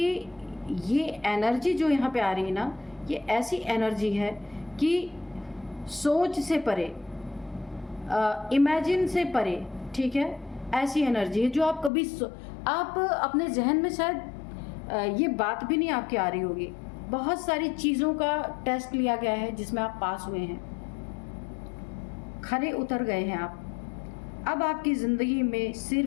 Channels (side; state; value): right; drops out; at 11.9 s